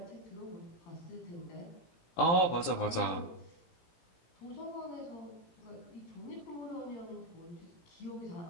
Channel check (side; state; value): right; late; 17 ms